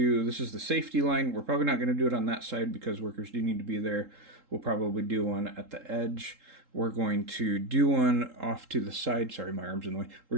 this is the safety line. We're probably not going to do it on that side because workers do need to be there. We'll probably do one at the edge. We're going to do one off to the side. Sorry, my arm's in the way. We're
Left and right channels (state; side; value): late; left; 3.8 ms